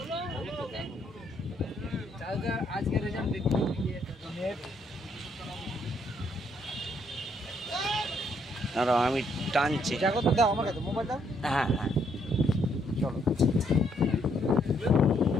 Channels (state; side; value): normal; both; correlation 0.71